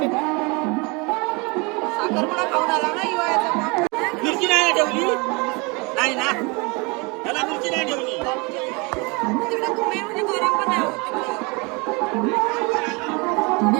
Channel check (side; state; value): left; quieter; 28.9 dB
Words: साखरपुडा खाऊन आला ना हिवाळ्याचा. मिरची नाही ठेवली नाही ना, त्याला मिरची नाही ठेवली. तिकडे तुम्ही म्हणजे गरम पण नाही होत.